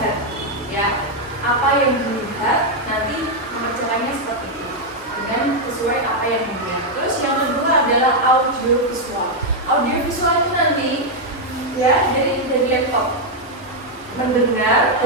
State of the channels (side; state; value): both; normal; correlation -0.01